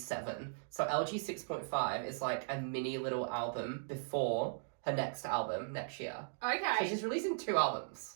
So LG 6.5 is like a mini little album before her next album next year. Okay. So she's releasing 2 albums.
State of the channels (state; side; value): silent; left; digital silence